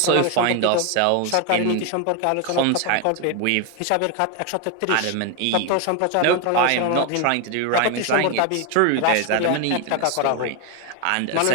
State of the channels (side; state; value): both; different; correlation 0.01